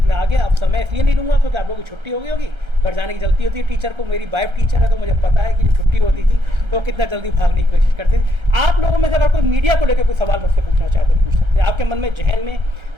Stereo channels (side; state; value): left; late; 1.3 ms